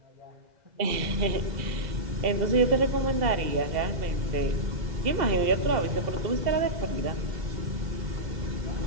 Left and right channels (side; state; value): left; late; 2.0 ms